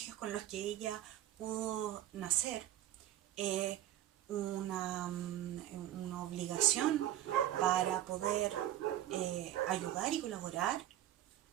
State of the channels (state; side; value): quieter; left; 12.6 dB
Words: con los que ella pudo nacer, una obligación para poder ayudar y colaborar